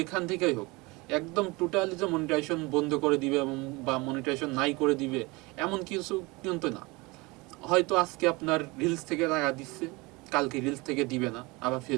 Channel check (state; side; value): quieter; left; 24.5 dB